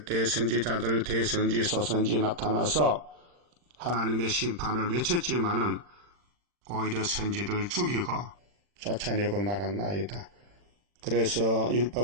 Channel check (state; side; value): late; left; 40 ms